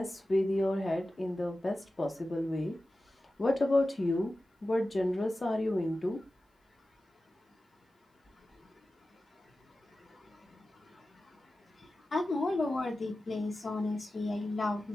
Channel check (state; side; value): normal; both; correlation 0.94